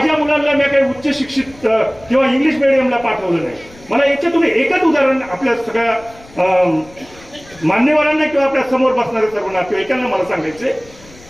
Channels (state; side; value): noise; left; rumble, 23 dB below the sound